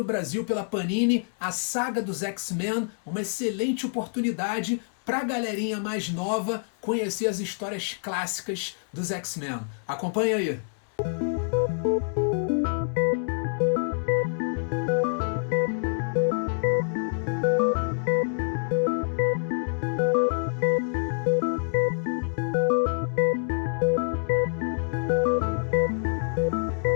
Brasil pela Panini, a Saga dos X-Men, uma excelente oportunidade pra galerinha mais nova conhecer as histórias clássicas dos X-Men. Acompanha aí.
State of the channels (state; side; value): silent; right; 60 dB below the other